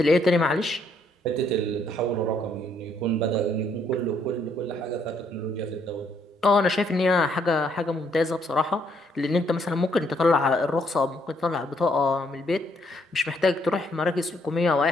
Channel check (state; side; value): normal; both; correlation 0.70